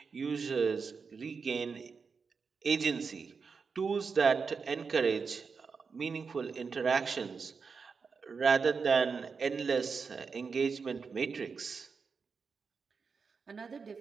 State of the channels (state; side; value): quieter; left; 5.3 dB